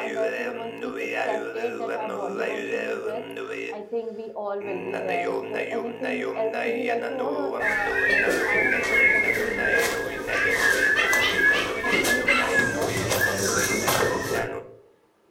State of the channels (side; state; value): both; identical; correlation 1.00